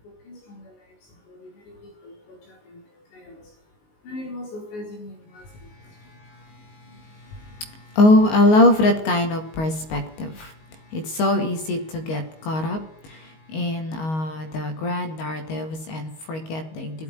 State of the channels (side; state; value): right; late; 19 ms